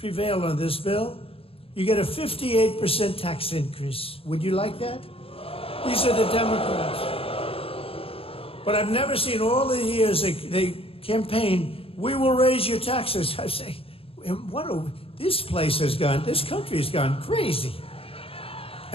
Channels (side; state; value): right; late; 0.27 ms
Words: on this bill, you get a 58% tax increase. Would you like that? These are the Democrats. But I've never seen all the years they campaign, we will raise your taxes. I say, this place has gone, this country has gone crazy.